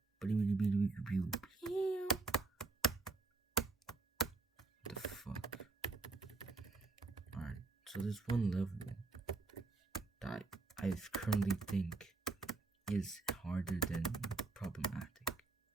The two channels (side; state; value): left; quieter; 3.5 dB